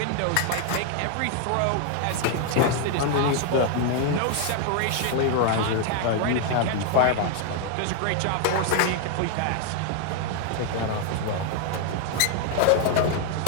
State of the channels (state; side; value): different; both; correlation 0.00